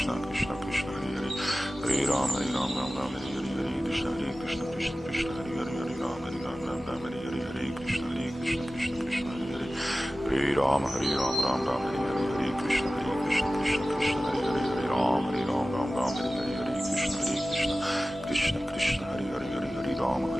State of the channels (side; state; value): both; normal; correlation 0.96